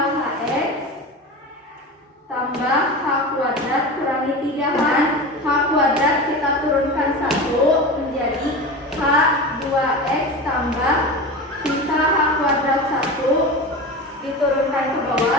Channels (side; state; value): both; normal; correlation 0.28